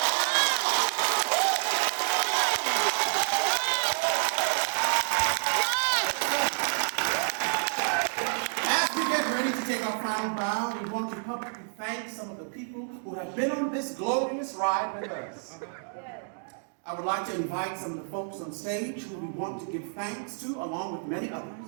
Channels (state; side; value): silent; left; digital silence